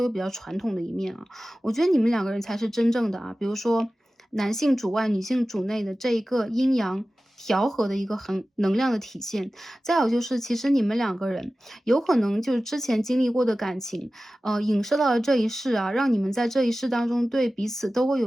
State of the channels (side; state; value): both; normal; correlation 0.96